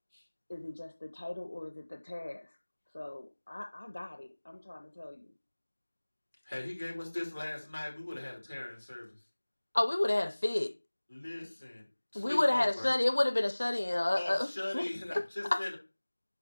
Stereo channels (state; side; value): inverted; both; correlation -1.00